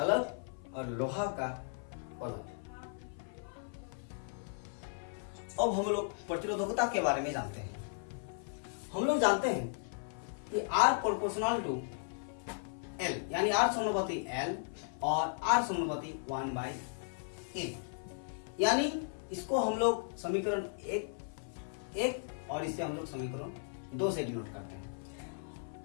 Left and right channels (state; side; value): silent; right; 54 dB below the other